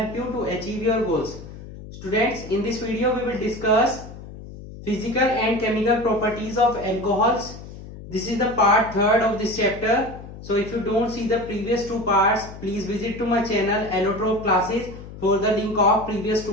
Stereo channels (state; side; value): noise; left; hum, 14 dB below the sound